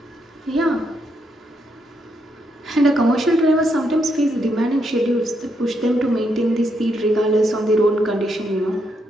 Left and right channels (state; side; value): normal; both; correlation 0.79